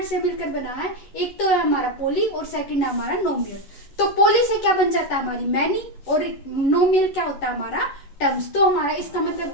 से मिलकर बना है। एक तो है हमारा पोली और सेकंड है हमारा नोमियल। तो पोली से क्या बन जाता है? हमारी मैनी, और नोमियल क्या होता है? हमारा टर्म्स। तो हमारा इसका मतलब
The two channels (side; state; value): right; late; 11 ms